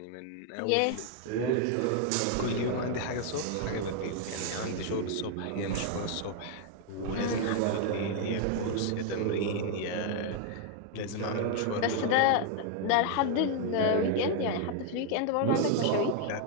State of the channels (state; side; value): different; both; correlation 0.00